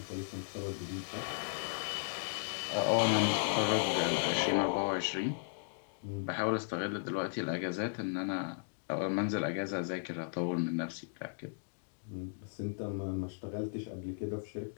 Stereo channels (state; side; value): silent; right; digital silence